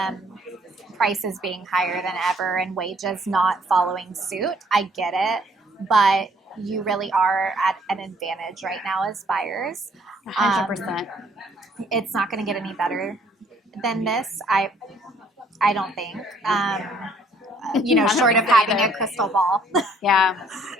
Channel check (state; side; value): normal; both; correlation 0.63